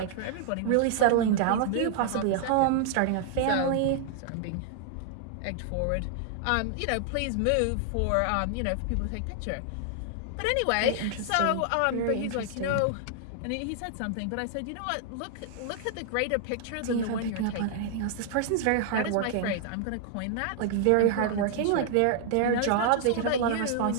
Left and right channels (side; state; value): both; different; correlation 0.00